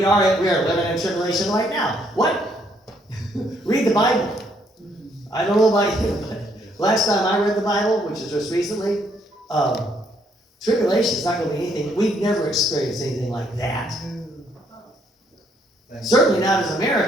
are living in tribulation right now. What? Read the Bible. I don't know about you, but last time I read the Bible, which is just recently, tribulation is not going to be anything. We've never experienced anything like that. Certainly not as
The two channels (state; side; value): normal; both; correlation 0.70